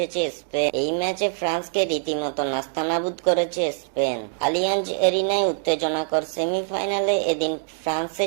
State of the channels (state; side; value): silent; left; digital silence